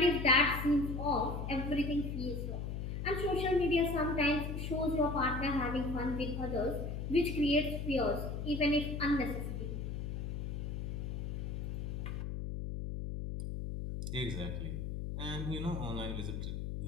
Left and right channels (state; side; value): noise; left; hum, 4 dB below the sound